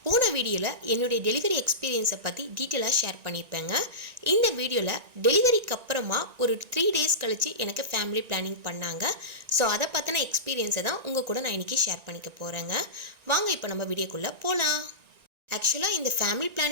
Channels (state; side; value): late; left; 1.9 ms